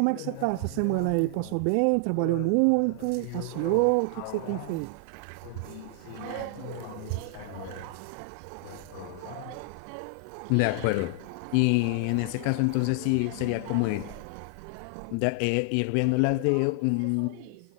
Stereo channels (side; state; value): both; different; correlation 0.00